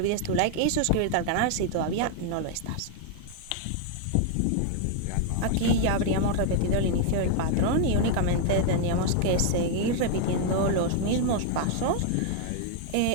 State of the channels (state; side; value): different; both; correlation 0.00